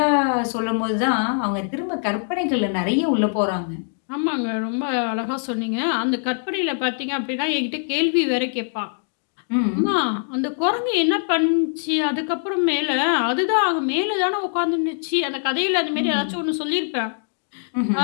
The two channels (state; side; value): silent; right; digital silence